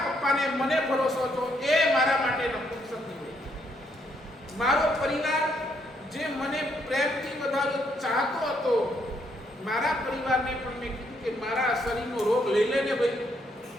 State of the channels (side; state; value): both; normal; correlation 0.73